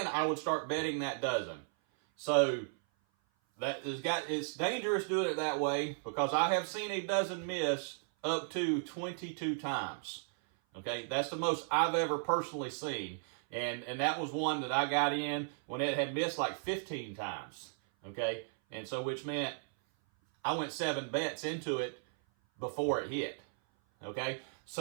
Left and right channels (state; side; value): silent; left; 54 dB below the other